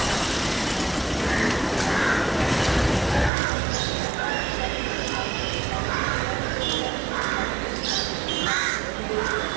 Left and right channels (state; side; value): drops out; left; at 3.3 s